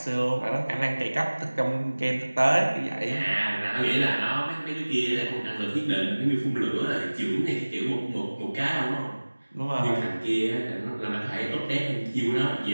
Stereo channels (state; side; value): inverted; both; correlation -1.00